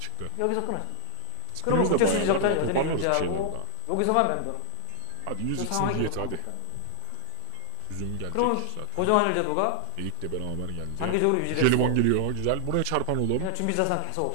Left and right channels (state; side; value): different; both; correlation -0.01